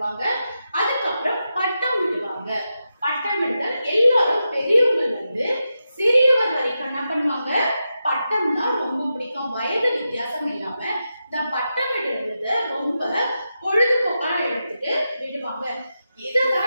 அதுக்கப்புறம் பட்டம் விடுவாங்க. பட்டம் விடுதல் எல்லாரும் பெரியவங்கள்ல இருந்து சிறியவர் வரைக்கும் என்ன பண்ணுவாங்க, பட்டம் தான் ரொம்ப பிடிக்கும். வயது வித்தியாசம் இல்லாம இந்த பட்டம் விடுறத ரொம்ப பொழுதுபோக்கா எடுத்துட்டு விடுவாங்க.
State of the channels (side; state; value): both; inverted; correlation -0.89